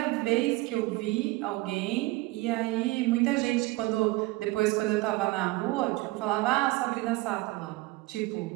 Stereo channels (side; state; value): left; quieter; 20.7 dB